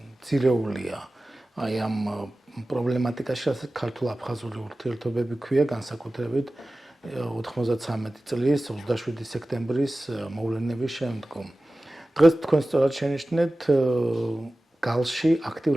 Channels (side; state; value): both; normal; correlation 0.96